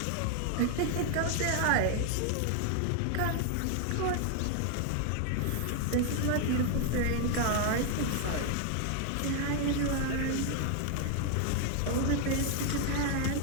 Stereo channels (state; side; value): different; both; correlation 0.00